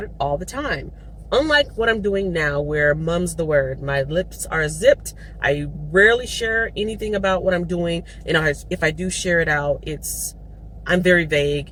it all the time. Unlike what I'm doing now, where mum's the word. My lips are zipped. I rarely share anything about what I'm doing. And if I do share it out, it's I'm very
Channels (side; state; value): both; identical; correlation 1.00